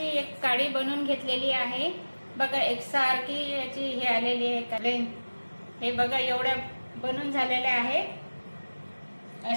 एक काडी बनवून घेतलेली आहे। बघा, एकसारखी याची हे आलेली आहे। हे बघा, एवढ्या बनवून झालेल्या आहेत।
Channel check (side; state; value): both; inverted; correlation -1.00